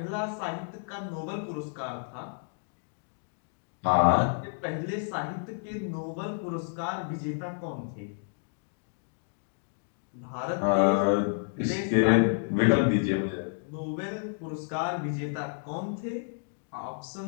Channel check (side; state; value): right; silent; digital silence